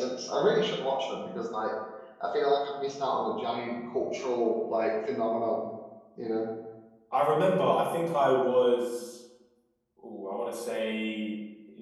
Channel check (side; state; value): both; identical; correlation 1.00